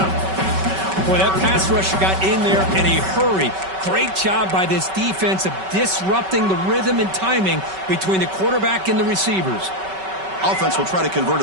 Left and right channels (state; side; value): late; left; 5.3 ms